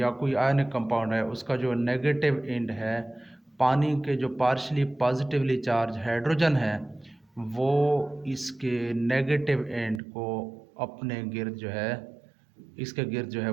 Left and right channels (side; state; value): left; drops out; at 10.0 s